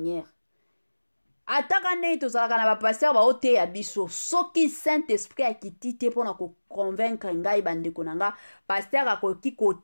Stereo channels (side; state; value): both; inverted; correlation -1.00